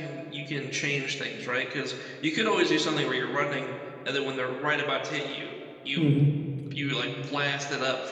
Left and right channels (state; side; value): identical; both; correlation 1.00